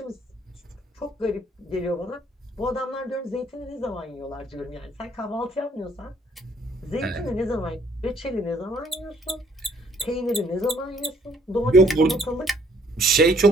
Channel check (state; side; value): normal; both; correlation 0.64